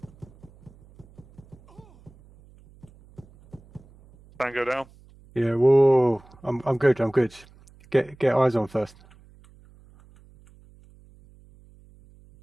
Tango down. Yeah. Whoa. I'm good. I'm good. Get eyes on first.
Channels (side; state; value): right; noise; hum, 26 dB below the sound